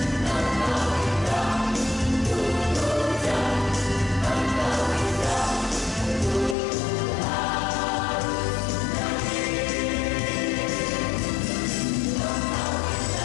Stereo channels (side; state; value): right; drops out; at 6.6 s